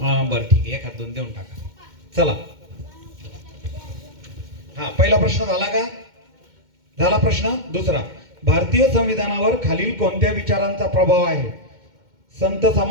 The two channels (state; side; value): late; left; 2.1 ms